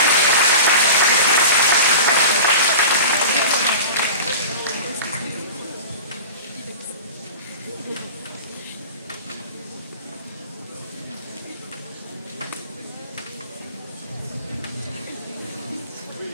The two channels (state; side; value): inverted; both; correlation -0.35